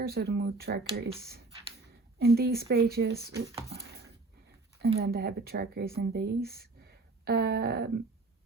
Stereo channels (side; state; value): left; quieter; 3.5 dB